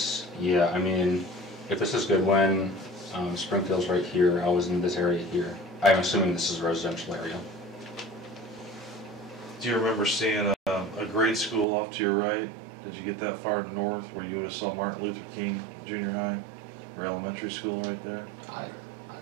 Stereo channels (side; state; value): left; drops out; at 11.7 s